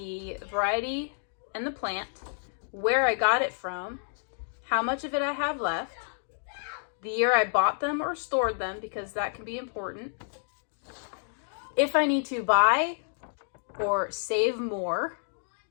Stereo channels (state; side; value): silent; right; digital silence